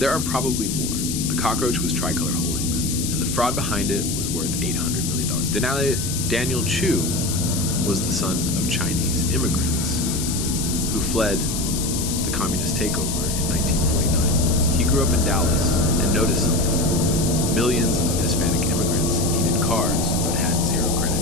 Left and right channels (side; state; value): left; noise; hiss, 4 dB below the sound